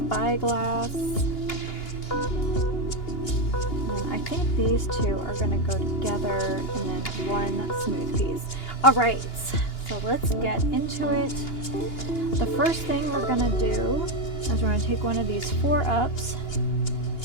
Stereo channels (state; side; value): late; right; 2.9 ms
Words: And I think these two are going to go together and then one smooth piece. Alright, so let's get into it. The first thing we're going to do is we're going to take one of these 4-ups